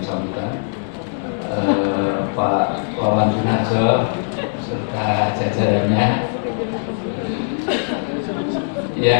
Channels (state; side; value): silent; right; digital silence